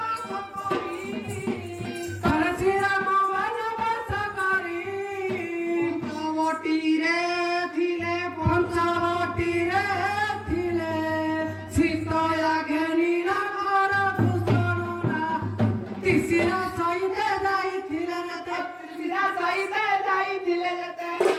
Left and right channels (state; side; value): identical; both; correlation 1.00